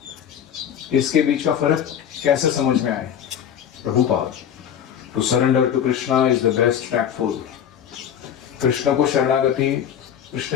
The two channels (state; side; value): quieter; right; 9.1 dB